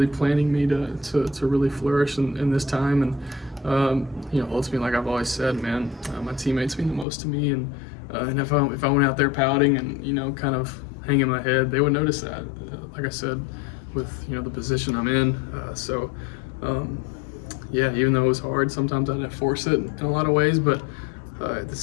planning me to really flourish in this time. And, you know, ultimately, like I've always said, man, my teammates mean the most to me. And if I went out there pouting and, you know, kind of hanging my head, they would notice that, like I said, with, you know, the position I'm in. Yeah, even though it was hard, sometimes I had to force it in a lot of ways, but at the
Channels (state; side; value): drops out; right; at 7.1 s